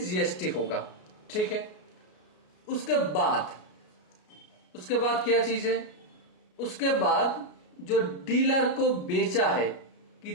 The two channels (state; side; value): late; right; 33 ms